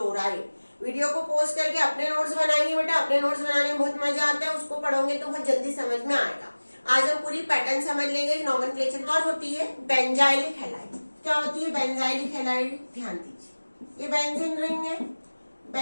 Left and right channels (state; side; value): inverted; both; correlation -1.00